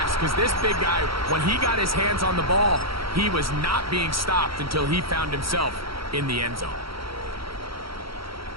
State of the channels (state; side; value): late; left; 0.75 ms